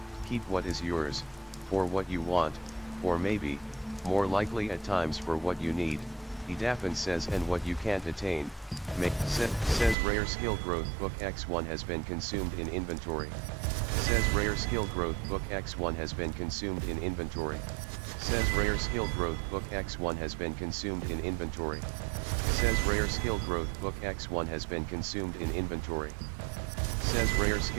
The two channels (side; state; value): left; drops out; at 10.0 s